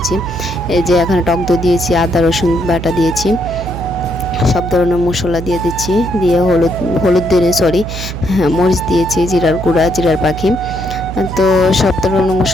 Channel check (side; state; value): right; noise; hum, 8 dB below the sound